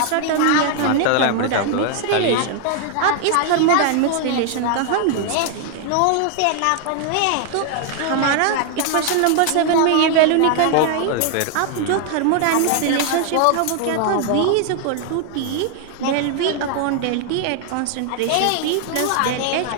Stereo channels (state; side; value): different; both; correlation 0.00